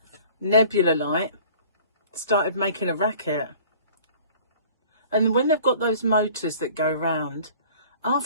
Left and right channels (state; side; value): inverted; both; correlation -0.49